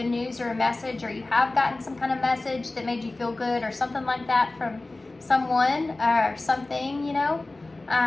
news or a message, or you have gotten some kind of message that made you feel good or something like that from someone or something,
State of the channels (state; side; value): quieter; right; 3.0 dB